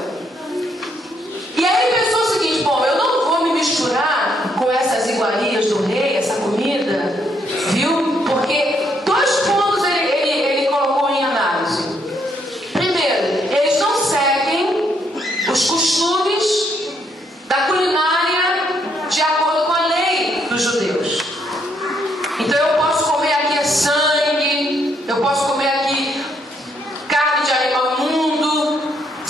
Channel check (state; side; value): normal; both; correlation 0.73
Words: E aí ele pensou o seguinte: bom, eu não vou me misturar com essas iguarias do rei, essa comida, viu? Porque dois pontos ele colocou em análise. Primeiro, eles não seguem os costumes da culinária de acordo com a lei dos judeus. Então eu posso comer aqui sangue, eu posso comer aqui carne de animal imundo,